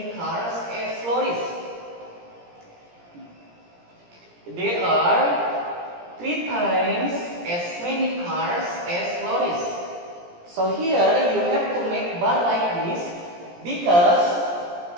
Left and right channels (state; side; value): late; left; 17 ms